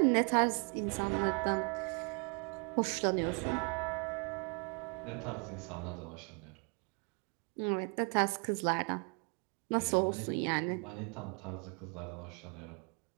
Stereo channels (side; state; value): left; quieter; 36.8 dB